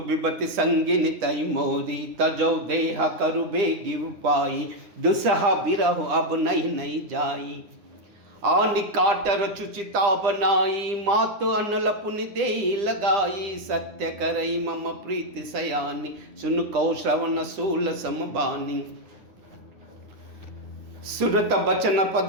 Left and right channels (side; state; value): left; late; 9.7 ms